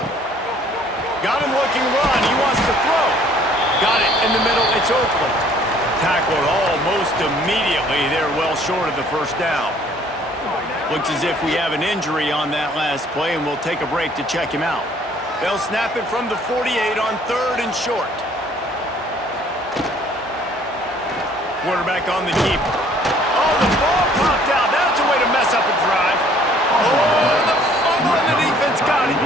Got him looking run. He wants to throw. Got it in the middle. It's Oakland. Tackled almost immediately. They're well short of the first down. Looks as if we have an injury on that last play, and we'll take a break to check him out. They'll snap it from the 48 on 3rd and short. Quarterback on the keeper. Oh, the ball popped out. That's a way to mess up a drive. Oh, the fumble, and the defense got it.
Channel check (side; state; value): both; normal; correlation 0.58